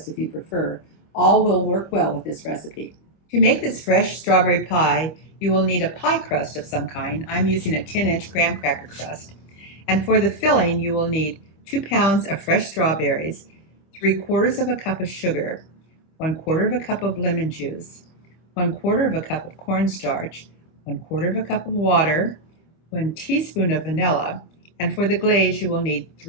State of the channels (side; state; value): right; late; 25 ms